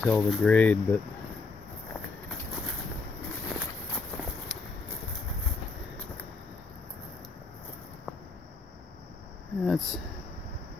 the grade, but that's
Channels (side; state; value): right; quieter; 4.0 dB